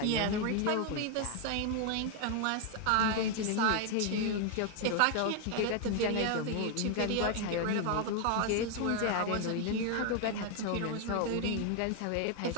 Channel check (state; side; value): different; both; correlation 0.01